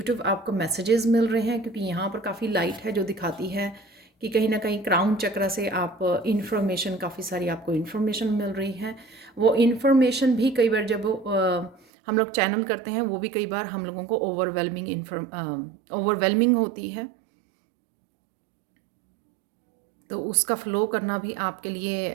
आपको मैसेजेस मिल रहे हैं, क्योंकि यहाँ पर काफ़ी लाइट है जो दिखाती है कि कहीं ना कहीं क्राउन चक्र से आप इन्फॉर्मेशन, काफ़ी सारी आपको इन्फॉर्मेशन मिल रही है। वो इन्फॉर्मेशन भी कई बार जब हम लोग चैनल करते हैं, वो भी कई बार हम लोगों को ओवरवेलमिंग होती है। तो उसका फ्लो करना भी आपके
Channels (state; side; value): drops out; left; at 11.8 s